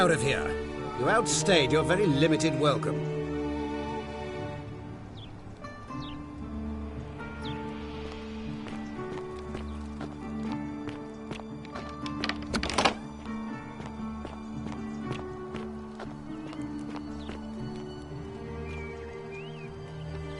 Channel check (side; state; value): both; identical; correlation 1.00